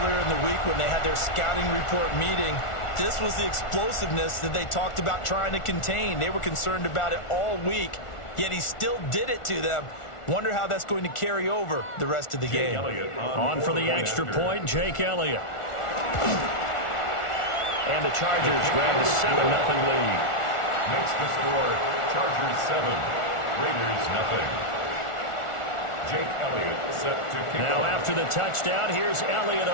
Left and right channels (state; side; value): late; right; 1.4 ms